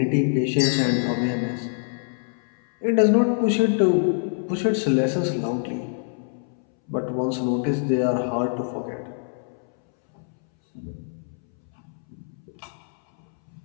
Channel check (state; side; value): silent; right; 62 dB below the other